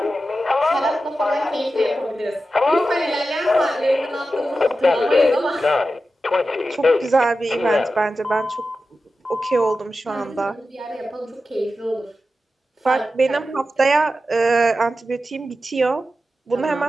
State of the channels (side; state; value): both; normal; correlation 0.92